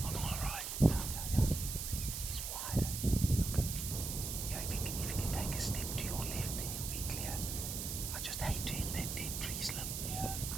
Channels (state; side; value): noise; right; hiss, 4 dB below the sound